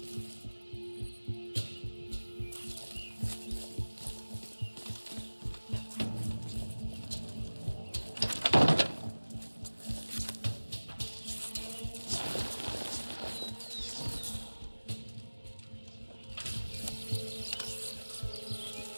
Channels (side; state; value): both; inverted; correlation -1.00